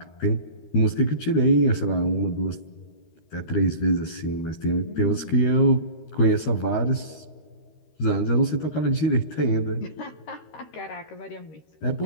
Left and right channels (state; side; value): late; right; 13 ms